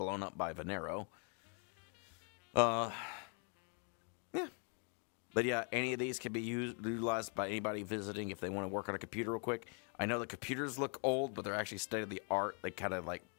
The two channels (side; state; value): right; quieter; 39.2 dB